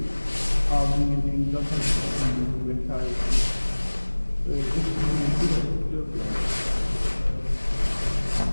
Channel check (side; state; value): both; inverted; correlation -1.00